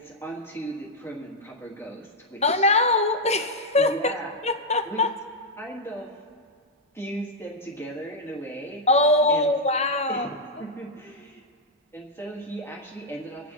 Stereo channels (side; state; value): both; normal; correlation -0.01